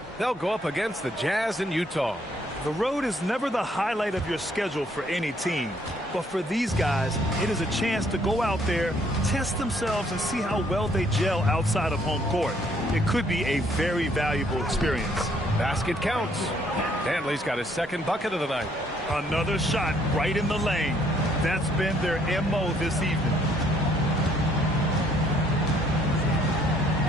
they'll go up against the Jazz in Utah. The road is never the highlight of your schedule for any team. But for these guys, it is a chance to go out there, test themselves, and see how well they gel outside of home court. It could be a very valuable experience. Basket counts. Dantley's got his 2nd bucket of the night. Another shot right in the lane. That's been their MO this evening.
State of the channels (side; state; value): both; normal; correlation 0.66